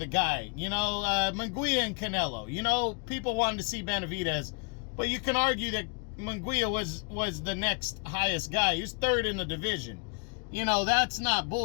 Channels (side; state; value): right; quieter; 36.5 dB